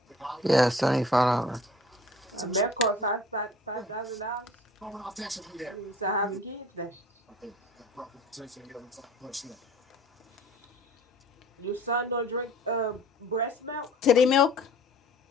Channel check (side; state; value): both; normal; correlation 0.47